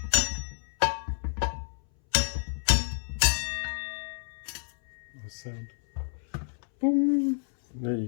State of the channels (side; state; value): right; silent; 58 dB below the other